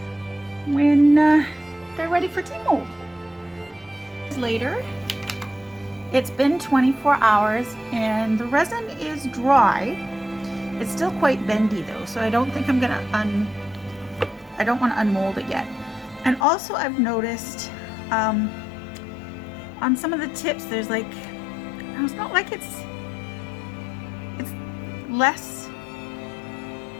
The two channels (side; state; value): right; drops out; at 16.4 s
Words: when they're ready for tea mold. Later, it's been 24 hours and the resin is dry. It's still quite bendy though, so I don't think I'm gonna I don't want to unmold it yet. And also I've noticed on some of the tips there's like, it's not like it's less